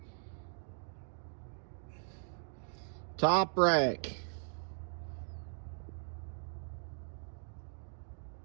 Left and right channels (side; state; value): left; silent; digital silence